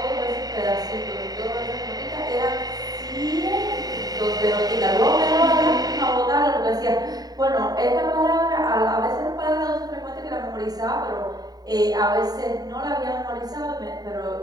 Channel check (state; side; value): late; left; 0.18 ms